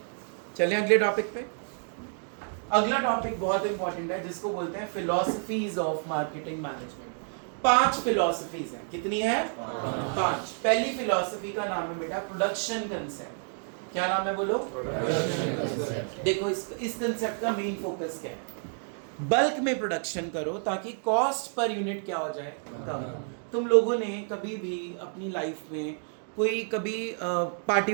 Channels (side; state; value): left; silent; 58 dB below the other